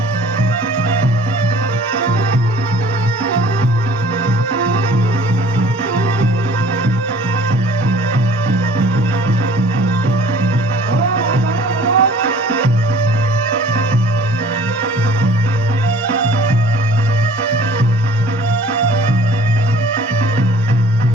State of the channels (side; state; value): both; normal; correlation 0.51